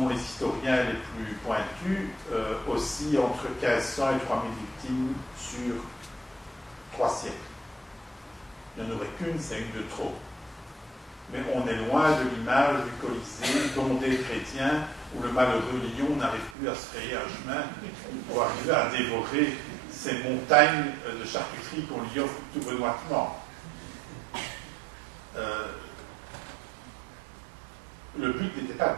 les historiens les plus pointus, oscille entre 1500 et 3000 victimes sur 3 siècles. Il n'y en aurait qu'une, c'est une de trop. Mais on est loin de l'image du Colisée, bondé de chrétiens, où le malheureux lion n'arrive plus à se frayer un chemin pour arriver à dévorer ces montagnes de charcuterie qu'on lui offre tout benoîtement. Le but n'était pas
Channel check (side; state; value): left; drops out; at 16.6 s